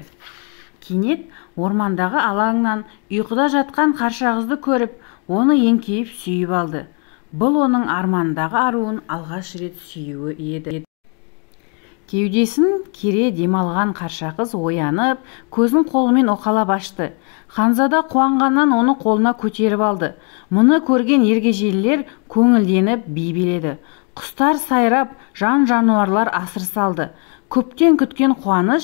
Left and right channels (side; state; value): right; quieter; 37.0 dB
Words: Кенет ормандағы алаңнан ұйқыда жатқан Қарша қызды көріп, оны еңкейіп сүйіп алды. Бұл оның армандағы аруын алғаш рет сүюі еді. Кеудесін кере демалған Қарша қыз оянып, көзін қолымен оқалап ашты. Ханзада қуанғаннан оны қолына көтеріп алды. Мұны көрген ергежейлілер көңілденіп би биледі. Құстар сайрап, жан-жануарлар асыр салды. Көптен күткен